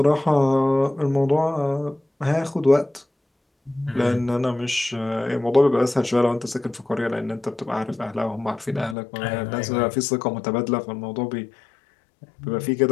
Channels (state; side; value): drops out; right; at 9.0 s